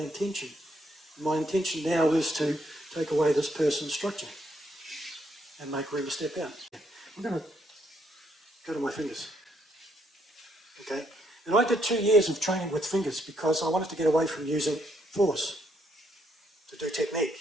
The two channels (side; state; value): both; normal; correlation 0.73